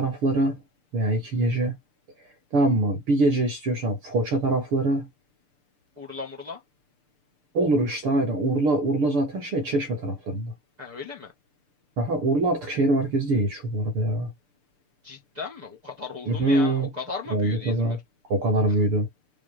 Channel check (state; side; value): late; left; 6.8 ms